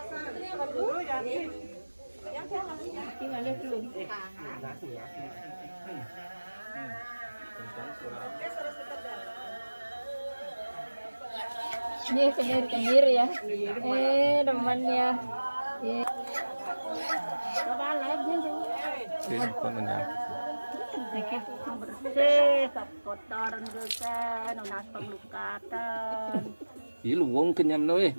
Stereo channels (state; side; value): inverted; both; correlation -1.00